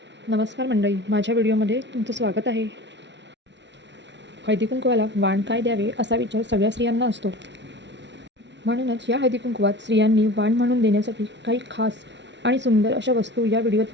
नमस्कार मंडळी, माझ्या व्हिडिओमध्ये तुमचं स्वागत आहे. हळदीकुंकवाला वाण काय द्यावे असा विचार सगळ्या स्त्रियांना असतो. म्हणूनच या हळदीकुंकवात स्त्रियांनी वाण म्हणून देण्यासाठी काही खास आणि सुंदर अशा वस्तू या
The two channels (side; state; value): left; late; 0.51 ms